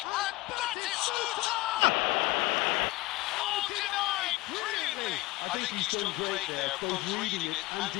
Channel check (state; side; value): quieter; right; 19.9 dB